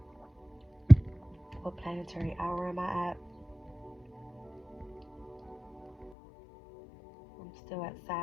What planetary hour am I at? I'm still at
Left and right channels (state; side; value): drops out; right; at 6.1 s